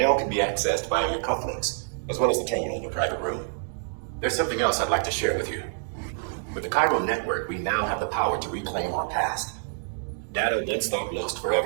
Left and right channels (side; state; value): left; silent; 60 dB below the other